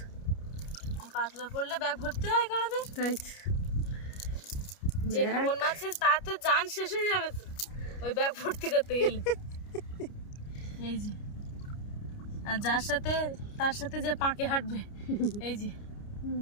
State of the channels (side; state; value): right; late; 29 ms